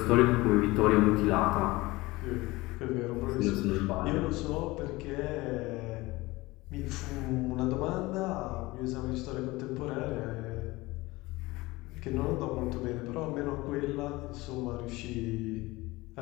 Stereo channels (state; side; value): quieter; right; 20.8 dB